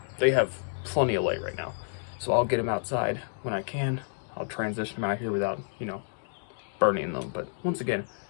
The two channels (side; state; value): right; silent; digital silence